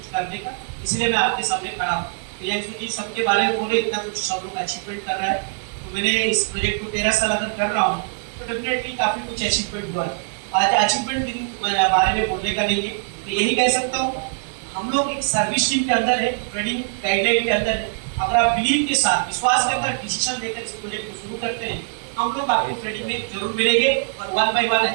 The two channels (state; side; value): silent; left; 64 dB below the other